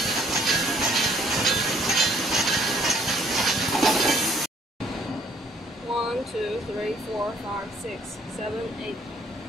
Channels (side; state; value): both; normal; correlation 0.62